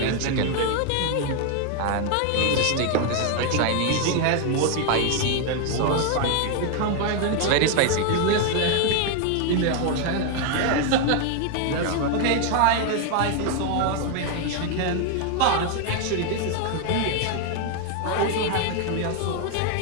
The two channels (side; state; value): both; different; correlation 0.01